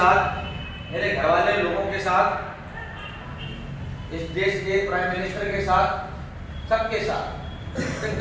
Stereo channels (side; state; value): both; identical; correlation 1.00